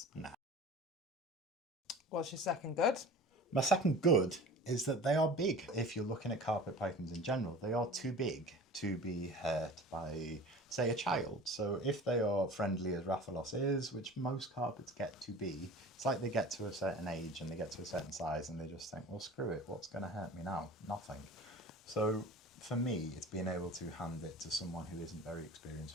Nah. What's your second good? My second good is that they are big. If you're looking at carpet pythons in general, they are too big to be hurt by, say, a child. So if they are friendly as Rathalos is, which most carpets get to be, it's like they get to a certain age and they get to a certain size and they just think, well, screw it, what's going to hurt me now? Nothing. So for me, it's being able to hand it to someone who isn't very experienced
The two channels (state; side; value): normal; both; correlation 0.40